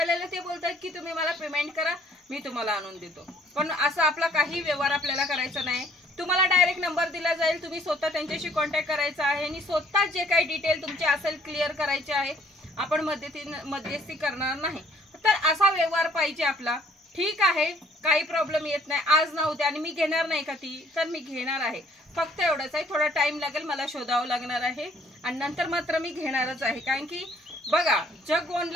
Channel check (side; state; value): both; normal; correlation 0.61